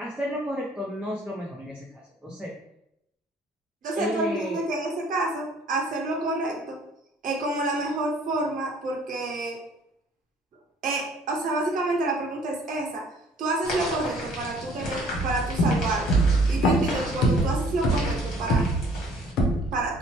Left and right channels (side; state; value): both; normal; correlation 0.56